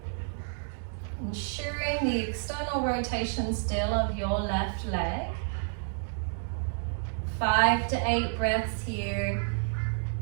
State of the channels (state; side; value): silent; left; 58 dB below the other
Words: ensuring the external rotation still of your left leg. 5 to 8 breaths here.